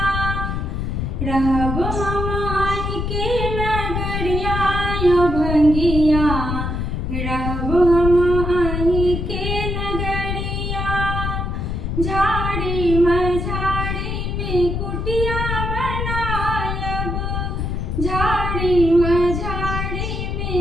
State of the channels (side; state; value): left; noise; rumble, 2 dB below the sound